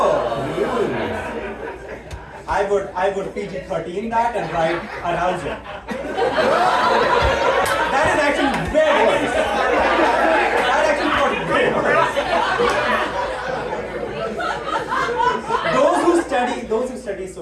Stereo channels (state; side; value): identical; both; correlation 1.00